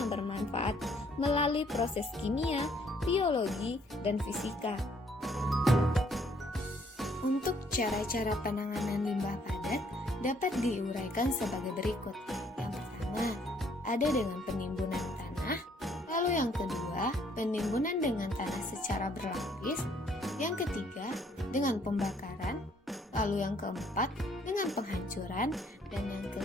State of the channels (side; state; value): both; normal; correlation 0.65